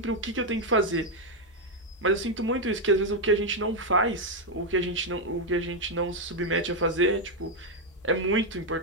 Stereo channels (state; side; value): normal; both; correlation 0.02